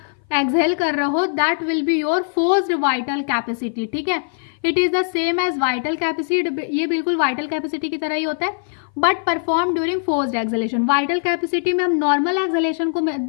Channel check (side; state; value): right; silent; 57 dB below the other